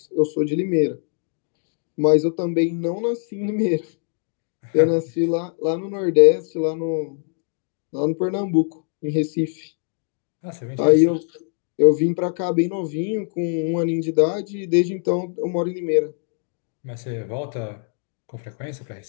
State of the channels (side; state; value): right; silent; 62 dB below the other